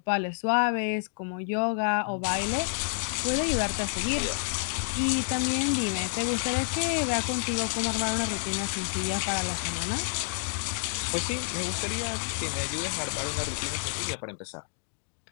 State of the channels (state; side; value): silent; right; digital silence